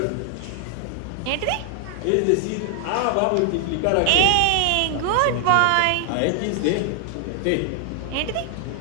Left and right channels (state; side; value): different; both; correlation 0.00